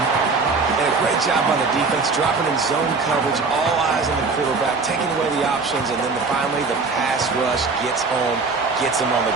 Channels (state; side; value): quieter; left; 4.2 dB